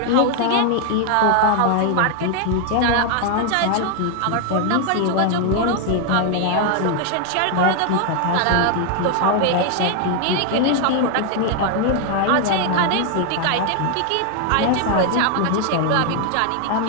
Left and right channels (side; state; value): both; different; correlation 0.00